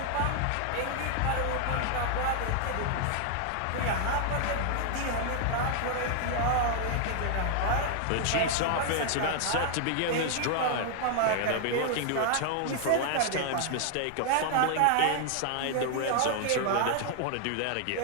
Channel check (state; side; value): different; both; correlation 0.00